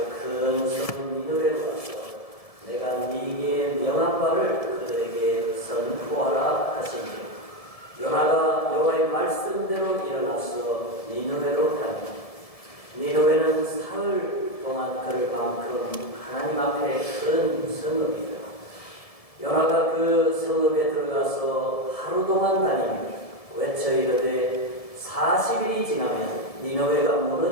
성 니느웨로 가서 내가 네게 명한 바를 그들에게 선포하라 하시니, 요나가 여호와의 말씀대로 일어나서 니느웨로 가니, 니느웨는 사흘 동안 걸을 만큼 하나님 앞에 큰 성읍이더라. 요나가 그 성읍에 들어가서 하루 동안 다니며 외쳐 이르되 40일이 지나면 니느웨가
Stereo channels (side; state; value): right; late; 1.7 ms